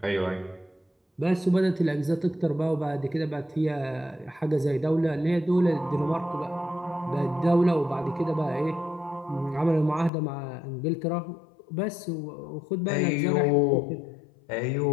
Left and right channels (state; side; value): drops out; right; at 10.1 s